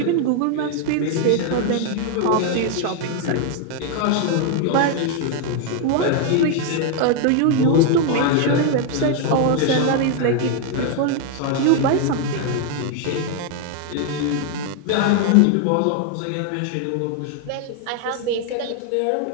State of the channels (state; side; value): different; both; correlation 0.00